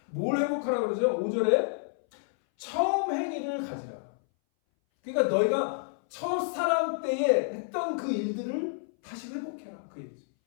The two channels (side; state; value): right; silent; 58 dB below the other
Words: 뭘 회복하라고 그러죠? 5절에 처음 행위를 가지라. 그러니까 너희가 첫사랑 때에 했던 그 일들을 다시 회복해라. 그 얘기죠.